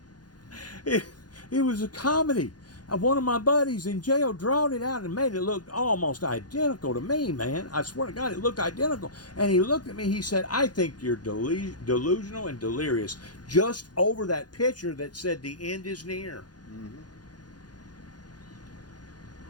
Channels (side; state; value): right; late; 0.69 ms